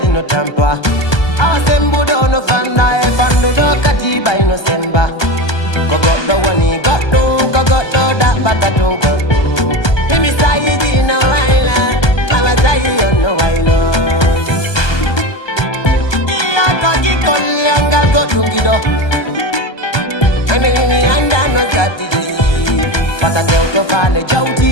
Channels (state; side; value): late; right; 1.2 ms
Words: no tampa awa sembudo no fanda e fandudo kadi bayno semba ko goɗɗo woni goɗɗum ko goɗɗo daɓɓata tun goɗɗum imi sayiji no wayla awa sayi on no waylo kaki kolyangal goɗɗum giɗo mi anda no zatiji pata tewto fale jawti